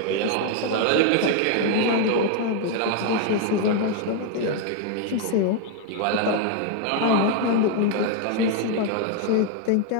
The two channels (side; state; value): both; different; correlation 0.00